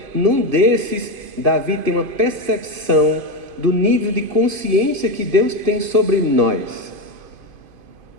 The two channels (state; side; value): late; left; 2.5 ms